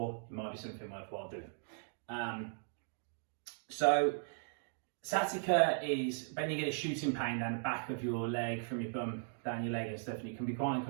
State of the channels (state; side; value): silent; left; digital silence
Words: it might be something worthwhile doing. So sciatica is when you get a shooting pain down the back of your leg, from your bum down your leg and stuff, and it can be quite